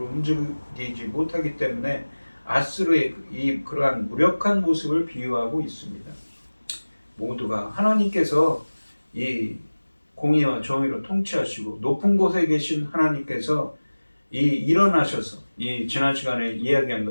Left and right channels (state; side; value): inverted; both; correlation -1.00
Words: 움직이지 못하기 때문에 아수르의 그러한 무력한 모습을 비유하고 있습니다. 모두가 하나님께서 이 공의와 정의로 통치하시고 높은 곳에 계신 하나님께서 일어나셔서 지난 시간에 이야기한